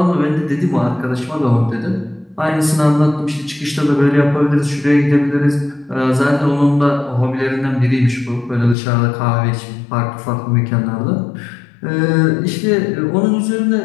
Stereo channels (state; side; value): drops out; right; at 8.8 s